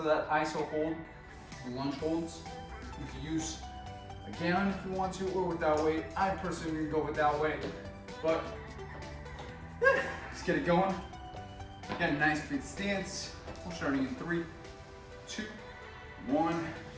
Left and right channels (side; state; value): both; identical; correlation 1.00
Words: that ISO hold, the lunge holds. You can use a gallon if you want to, or without weight. I personally go without weight, but let's get it going. Again, nice big stance. We're starting in 3, 2, 1,